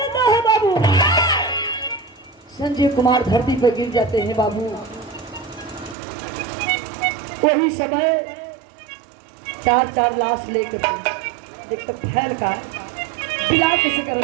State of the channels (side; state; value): left; drops out; at 6.0 s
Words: है बाबू। संजय कुमार धरती पर गिर जाते हैं बाबू। वही समय चार लाश लेकर एक तो फैल का बिला किसी कर